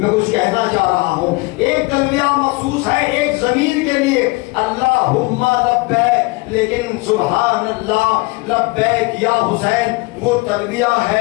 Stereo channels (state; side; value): quieter; right; 24.8 dB